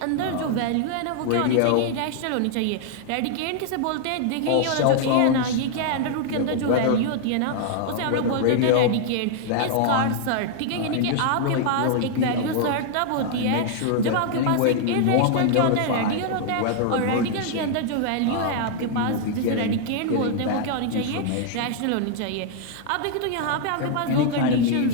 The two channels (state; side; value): different; both; correlation 0.00